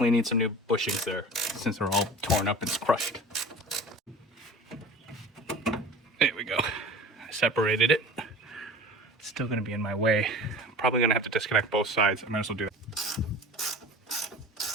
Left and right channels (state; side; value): normal; both; correlation 0.39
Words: need some new bushings there since they're all torn up and crushed. There we go. I separated it. It's still gonna be in my way. I'm probably gonna have to disconnect both sides. I might as well do that.